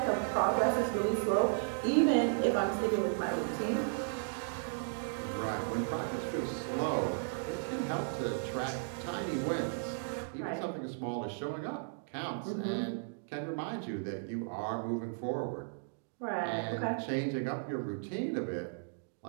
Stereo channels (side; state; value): left; silent; digital silence